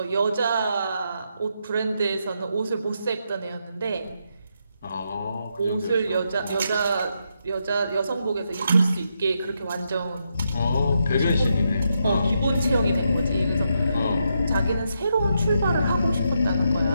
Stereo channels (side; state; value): both; inverted; correlation -0.81